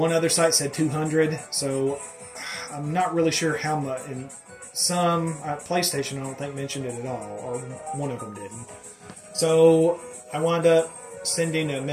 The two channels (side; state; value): both; identical; correlation 1.00